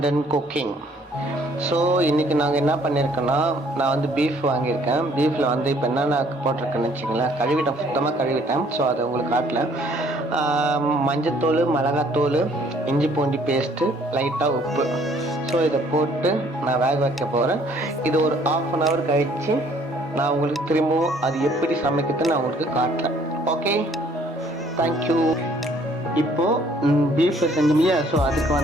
and cooking. So இன்றைக்கி நாங்கள் என்ன பண்ணியிருக்கோன்னா, நான் வந்து பீஃப் வாங்கியிருக்கேன். பீஃபில் வந்து இப்போ என்னென்ன போட்டிருக்கேன்னு வச்சிங்களேன், கழுவிட்டேன், சுத்தமாக கழுவிட்டேன். ஸோ அதை உங்களுக்கு காட்டல. மஞ்சத்தூள், மிளகாத்தூள், இஞ்சி பூண்டி பேஸ்ட்டு, லைட்டாக உப்பு. ஸோ இதை போட்டு நான் வேக வைக்க போகிறேன். இது ஒரு 1/2 hour கழித்து நான் உங்களுக்கு திரும்பவும் அது எப்படி சமைக்கிறதுன்னு நான் உங்களுக்கு காட்டுறேன். Okay, thank you. இப்போது பீஃப் செஞ்சோம்லையா, ஸோ அதுக்கு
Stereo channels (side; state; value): both; normal; correlation 0.60